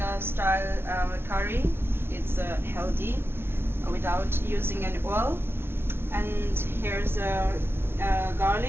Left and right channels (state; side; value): late; left; 0.11 ms